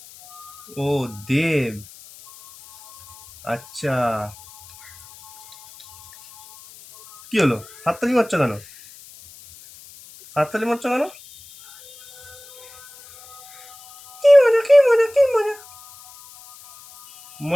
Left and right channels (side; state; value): left; noise; hiss, 21 dB below the sound